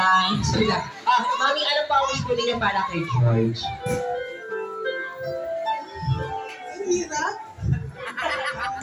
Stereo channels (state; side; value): identical; both; correlation 1.00